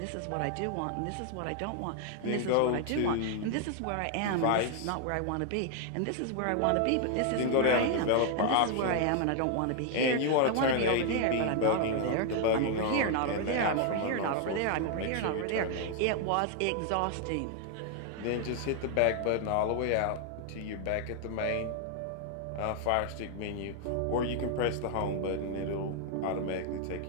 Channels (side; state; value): both; different; correlation 0.00